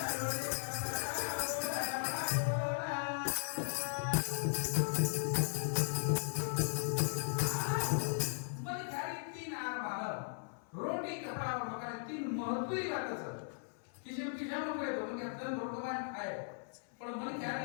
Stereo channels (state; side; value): silent; right; 53 dB below the other